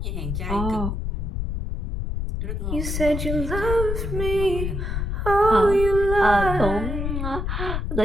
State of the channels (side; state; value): left; noise; rumble, 2 dB below the sound